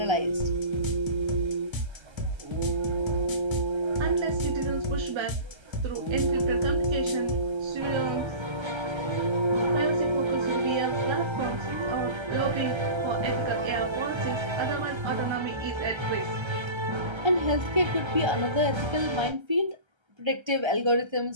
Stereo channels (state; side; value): late; left; 1.3 ms